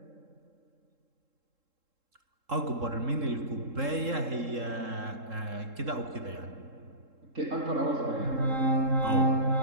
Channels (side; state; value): left; late; 3.7 ms